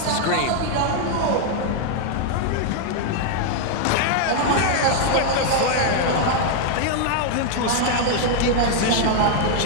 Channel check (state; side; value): different; both; correlation 0.00